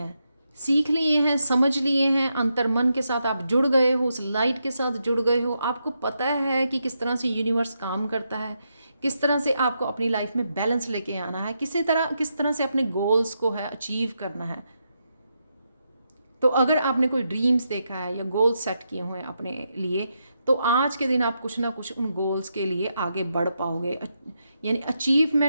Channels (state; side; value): inverted; both; correlation -0.83